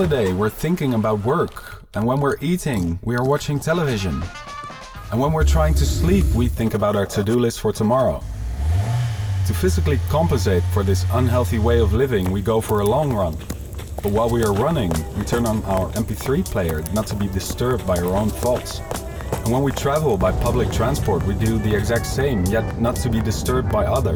we're thinking about work, and when we're eating, we are watching television. And when we're trying to sleep, we think about our to-do list for tomorrow. To physically compensate for this unhealthy way of living, we go for a long run. But while we are running, we turn on our MP3 player not to be disturbed by our own thoughts. And when we travel by public transport, we do the exact same, yet not to be disturbed by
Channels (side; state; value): both; identical; correlation 1.00